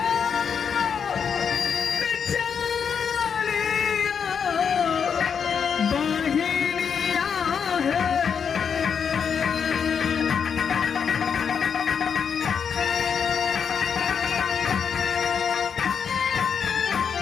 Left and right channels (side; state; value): right; quieter; 6.9 dB